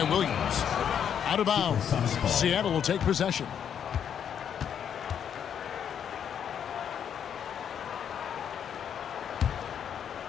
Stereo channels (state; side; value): quieter; right; 8.5 dB